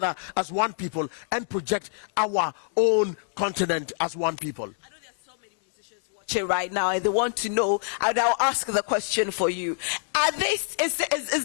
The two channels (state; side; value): silent; right; digital silence